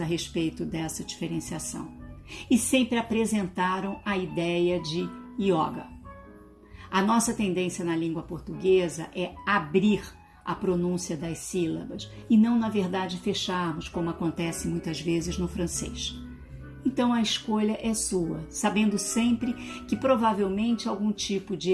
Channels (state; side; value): identical; both; correlation 1.00